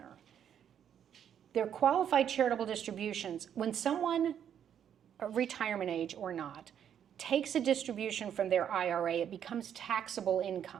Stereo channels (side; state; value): left; quieter; 9.1 dB